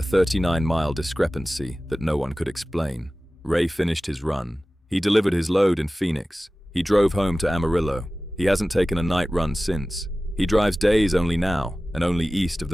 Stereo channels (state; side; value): normal; both; correlation 0.96